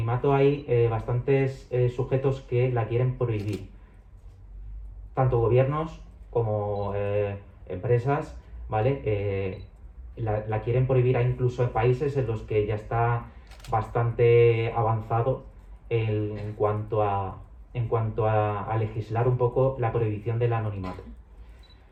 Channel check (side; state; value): both; identical; correlation 1.00